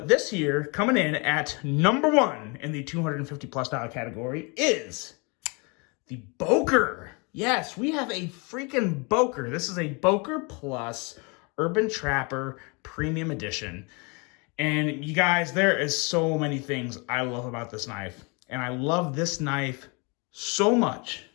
this year, coming in at number 1 in the $250+ category is the Boker. Yes, we have a freaking Boker. This is a Boker Plus Urban Trapper Premium Edition. And you guys, there is so many things I love about this knife. And I love this knife so much.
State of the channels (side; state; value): right; quieter; 30.7 dB